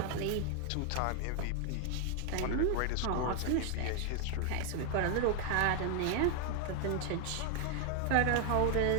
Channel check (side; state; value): both; different; correlation 0.00